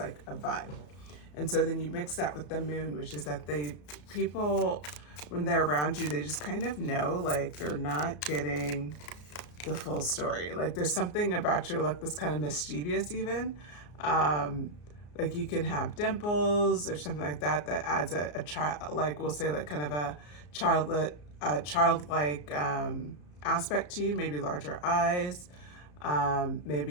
a vibe. And so then you mix that with the moon, which is that people, when they're around you, they just kind of know like they're not getting the full story. Like there's something about your look that's kind of mischievous even. Like you can have dimples or something like that that adds a child, like we'll say like kind of a childlike aspect to you, maybe larger eyes,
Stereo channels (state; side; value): late; right; 34 ms